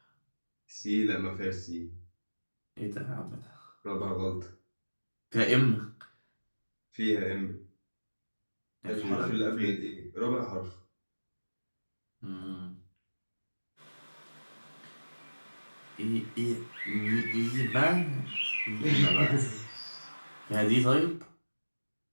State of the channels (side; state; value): both; inverted; correlation -1.00